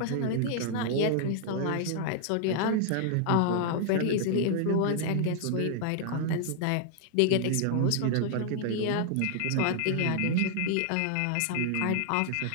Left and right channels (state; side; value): different; both; correlation 0.00